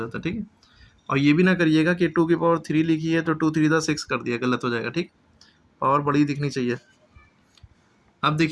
है। ठीक है, और ये भी ना करिएगा कि 2 की पावर 3 लिखी है तो 2 3 द 6 कर दिया, गलत हो जाएगा। ठीक, पावर बड़ी दिखनी चाहिए। अब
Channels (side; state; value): both; identical; correlation 1.00